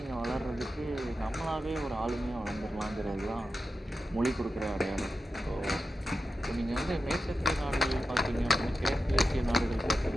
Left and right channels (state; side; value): normal; both; correlation 0.90